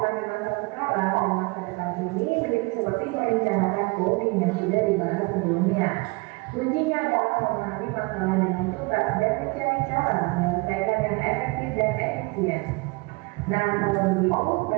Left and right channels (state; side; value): quieter; left; 26.5 dB